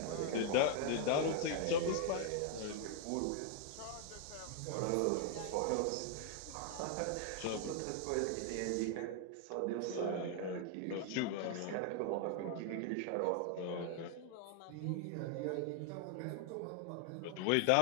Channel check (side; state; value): both; different; correlation 0.00